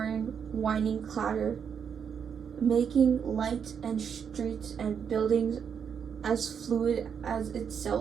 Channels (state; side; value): quieter; left; 7.3 dB